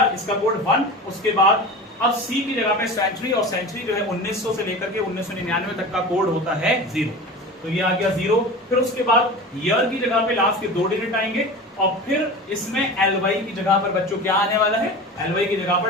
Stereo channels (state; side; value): normal; both; correlation 0.32